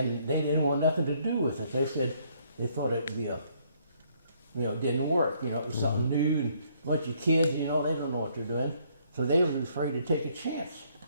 they didn't want nothing to do with it. They said they thought it'd be it didn't work. It was something new, and a bunch of kids, they don't know what they're doing. So they were afraid to take a chance.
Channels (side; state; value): both; inverted; correlation -0.66